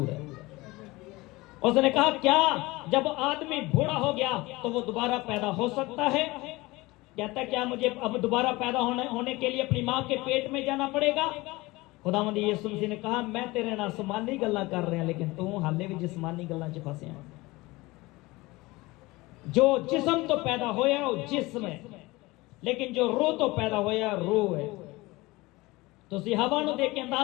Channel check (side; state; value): right; quieter; 21.4 dB